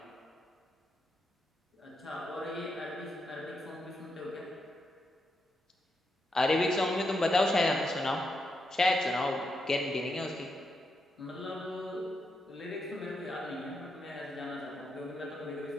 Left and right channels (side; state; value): both; normal; correlation 0.83